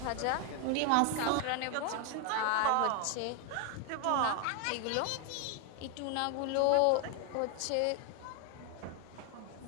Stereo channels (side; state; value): both; different; correlation 0.01